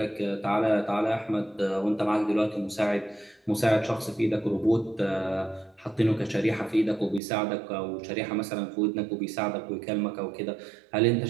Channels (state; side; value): drops out; left; at 7.2 s